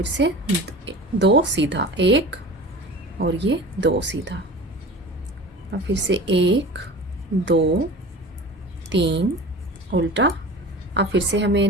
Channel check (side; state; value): both; normal; correlation 0.36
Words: से 2 सीधा, 1 और ये 2 सीधा। अब फिर से 1 2 3 उल्टा। अब फिर से हमें